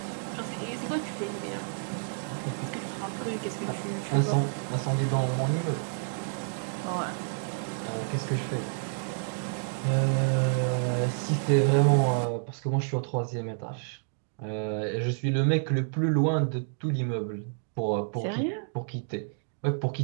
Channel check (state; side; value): silent; left; digital silence